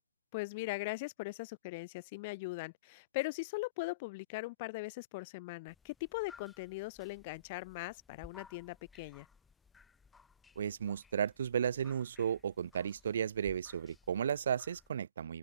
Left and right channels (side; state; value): both; inverted; correlation -0.51